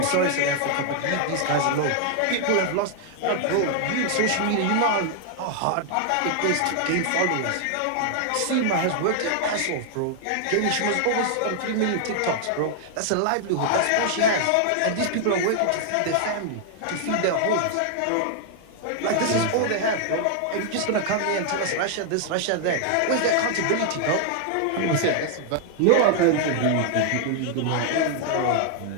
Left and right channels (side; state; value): both; different; correlation 0.00